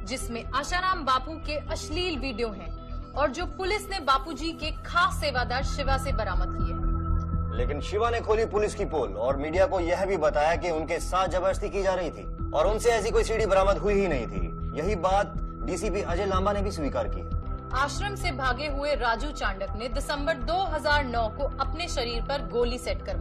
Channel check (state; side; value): identical; both; correlation 1.00